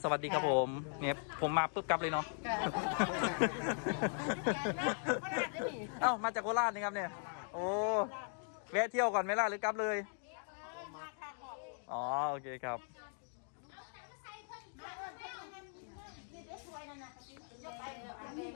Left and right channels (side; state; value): right; silent; 52 dB below the other